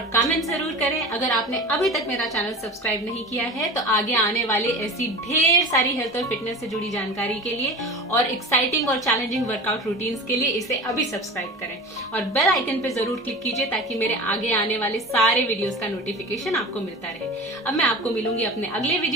कमेंट जरूर करें। अगर आपने अभी तक मेरा चैनल सब्सक्राइब नहीं किया है तो आगे आने वाले ऐसी ढेर सारी हेल्थ और फिटनेस से जुड़ी जानकारी के लिए और एक्साइटिंग और चैलेंजिंग वर्कआउट रूटीन्स के लिए इसे अभी सब्सक्राइब करें और बेल आइकन पे जरूर क्लिक कीजिए ताकि मेरे आगे आने वाले सारे वीडियोस का नोटिफिकेशन आपको मिलता रहे। अब मैं आपको मिलूंगी अपने अगले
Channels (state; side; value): normal; both; correlation 0.33